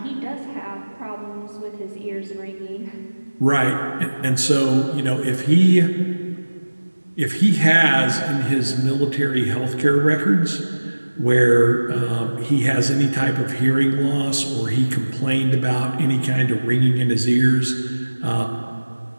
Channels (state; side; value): inverted; both; correlation -1.00